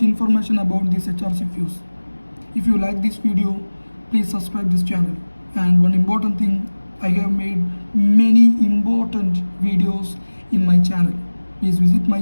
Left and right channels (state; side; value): inverted; both; correlation -1.00